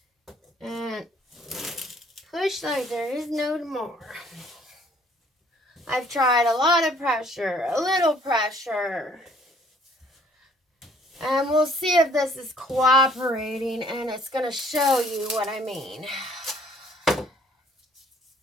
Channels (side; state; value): both; normal; correlation 0.60